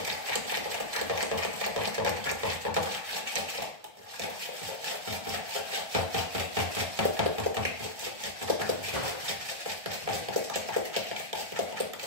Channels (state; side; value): late; left; 1.6 ms